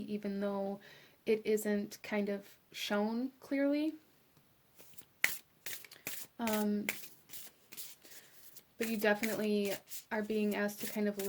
even though it isn't kind of shown clearly. But you definitely are being asked to kind of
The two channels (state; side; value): identical; both; correlation 1.00